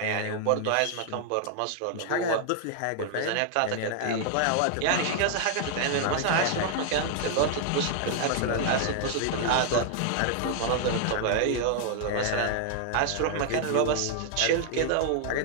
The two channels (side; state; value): both; different; correlation 0.00